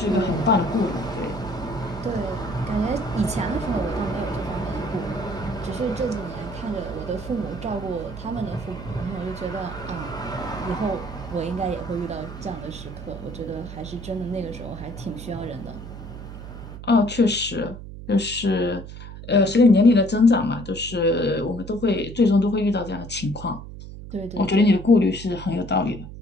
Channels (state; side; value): noise; right; hum, 12 dB below the sound